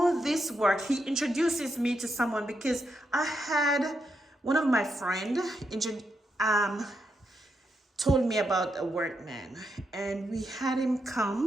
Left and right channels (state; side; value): normal; both; correlation 0.82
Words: this work, he introduces me to someone because I had one of my friend told me about a workman, and we had him